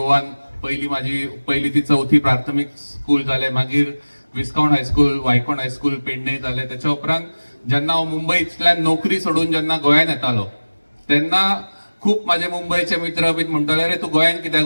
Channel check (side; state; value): both; inverted; correlation -1.00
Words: माझी पहिली ती 4थी प्राथमिक स्कूल जाले. मागीर विस्काउंट हायस्कूल, वायकोण हायस्कूल पेडणे जालें. त्याच्या उपरांत जेन्ना हांव मुंबयतल्यान नोकरी सोडून जेन्ना गोंयांत येतालो तेन्ना खूप माझे मुंबईचे मित्र बीन म्हणटाले, अरे तू गोंयांत